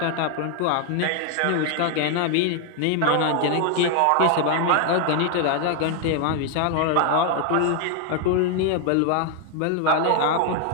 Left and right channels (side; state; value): both; different; correlation 0.00